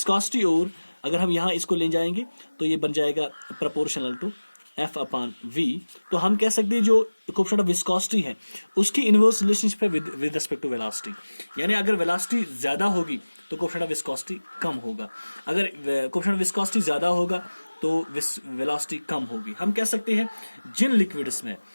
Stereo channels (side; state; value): both; inverted; correlation -1.00